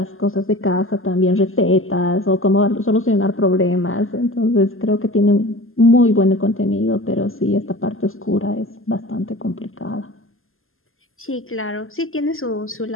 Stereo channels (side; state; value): right; late; 0.60 ms